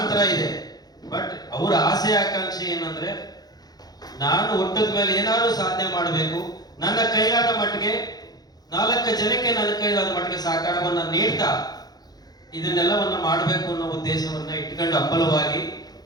ಇದೆ. ಬಟ್ ಅವರ ಆಸೆ ಆಕಾಂಕ್ಷೆ ಏನಂದ್ರೆ, ನಾನು ಹುಟ್ಟಿದ ಮೇಲೆ ಏನಾದ್ರು ಸಾಧನೆ ಮಾಡಬೇಕು, ನನ್ನ ಕೈಲಾದ ಮಟ್ಟಿಗೆ 4 ಜನಕ್ಕೆ ನನ್ನ ಕೈಲಾದ ಮಟ್ಟಿಗೆ ಸಹಕಾರವನ್ನ ನೀಡ್ತಾ ಇದನ್ನೆಲ್ಲವನ್ನ ಮಾಡಬೇಕು ಅನ್ನೋ ಉದ್ದೇಶವನ್ನ ಇಟ್ಕೊಂಡು ಹಂಬಲವಾಗಿ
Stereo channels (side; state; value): right; late; 0.19 ms